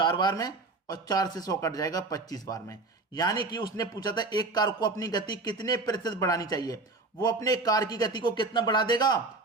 बार में, और 4 से 100 कट जाएगा 25 बार में। यानी कि उसने पूछा था एक कार को अपनी गति कितने प्रतिशत बढ़ानी चाहिए, वो अपने कार की गति को कितना बढ़ा देगा?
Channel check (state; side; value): quieter; left; 3.4 dB